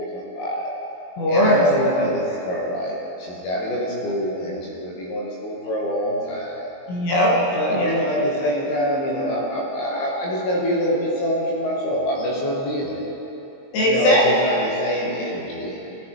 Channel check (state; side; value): late; right; 22 ms